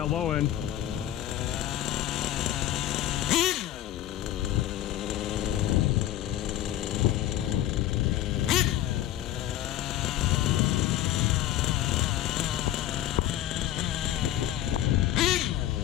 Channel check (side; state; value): right; quieter; 13.1 dB